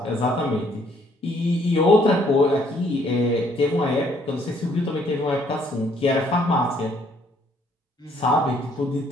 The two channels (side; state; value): both; normal; correlation 0.65